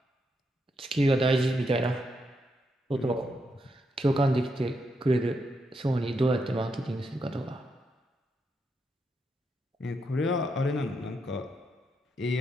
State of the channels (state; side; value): normal; both; correlation 0.81